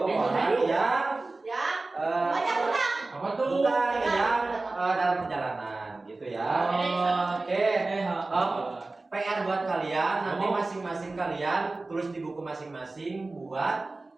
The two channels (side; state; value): left; quieter; 3.3 dB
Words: yang Ya. Banyak hutang. Apa tuh? bukan yang dalam perjalanan gitu ya. Oke. PR buat kalian, nanti masing-masing kalian tulis di buku masing-masing buat